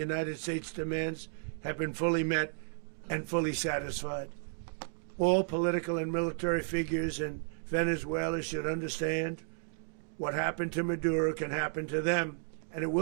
States demands have been fully met and fully satisfied. All political and military figures in Venezuela should understand what happened to Maduro can happen to them, and it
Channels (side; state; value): left; silent; digital silence